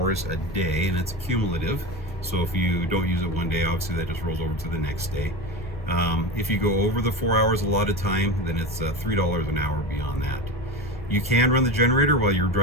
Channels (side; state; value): both; normal; correlation 0.25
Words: a day, and it's cumulative. So if you don't use it one day, obviously that just rolls over to the next day. If you go over the 4 hours allotted time, then it's $3 an hour beyond that. You can run the generator while you're